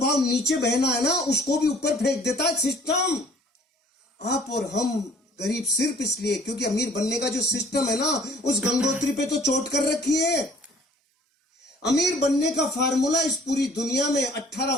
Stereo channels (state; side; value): normal; both; correlation 0.55